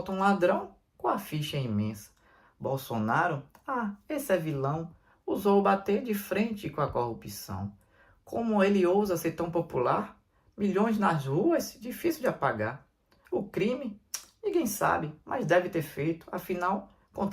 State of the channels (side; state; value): both; identical; correlation 1.00